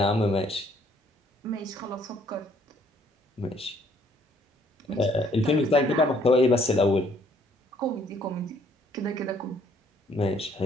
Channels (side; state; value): both; normal; correlation 0.63